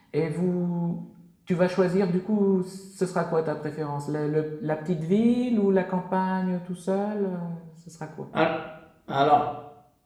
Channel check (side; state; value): both; identical; correlation 1.00